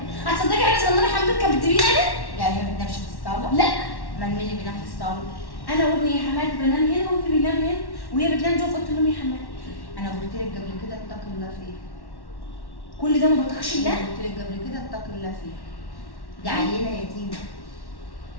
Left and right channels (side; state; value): right; late; 1.1 ms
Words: هتصدقي حاجه صغننه حماتك كانت بتجيبيني انا؟ يعني هي ما بتنامش في الصاله؟ لا امال مين اللي بينام في الصاله؟ انا وابني يا حماتي بنام هنا وابني بينام هنا وهي بتنام جوه في اوضه النوم يا حماتي. انا قلت لك قبل كده اتقي الله فيه. كل ده ما بطيقش الله؟ قلت لك قبل كده اتقي الله فيه. دي عيله يتيمه.